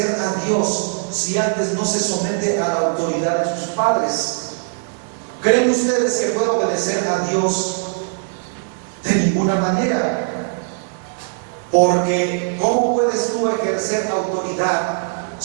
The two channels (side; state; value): left; silent; digital silence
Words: a Dios si antes no se somete a la autoridad de sus padres? ¿Creen ustedes que puede obedecer a Dios? De ninguna manera. Porque ¿cómo puedes tú ejercer autoridad